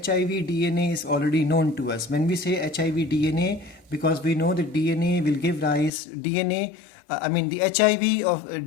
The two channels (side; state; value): right; drops out; at 5.9 s